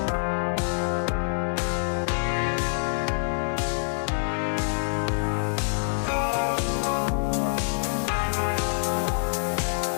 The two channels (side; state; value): right; silent; digital silence